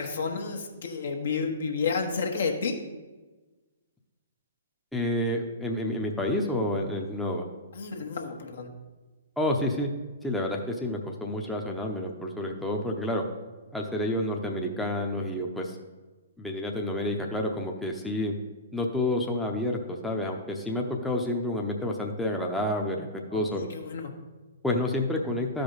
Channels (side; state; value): both; normal; correlation -0.12